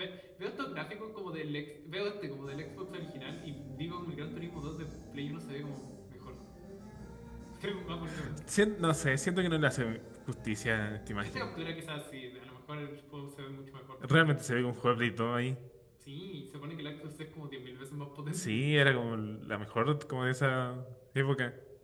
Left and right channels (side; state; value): both; identical; correlation 1.00